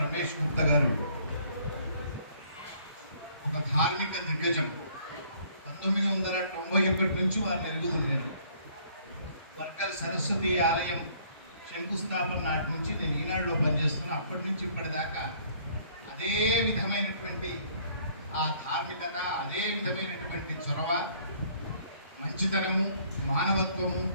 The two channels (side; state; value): both; inverted; correlation -0.60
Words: రమేష్ గుప్తా గారు ఒక ధార్మిక దిగ్గజం. 1991 నుంచి వారు ఎరుగుతుంది. నేను వర్కల్ సరస్వతి ఆలయం శంకుస్థాపన నాటి నుంచి నేను ఈనాడులో పనిచేస్తున్నా. అప్పటి నుంచి ఇప్పటిదాకా అదే విధమైనటువంటి ఆ ధార్మికత, అదే విధమైనటువంటి చొరవ, మంచితనము, మానవత్వము